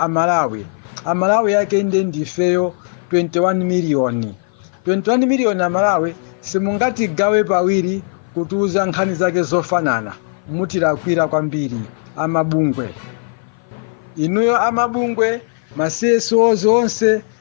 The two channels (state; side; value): silent; right; 55 dB below the other